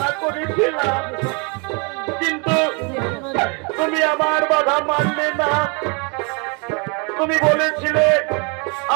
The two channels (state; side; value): quieter; left; 33.4 dB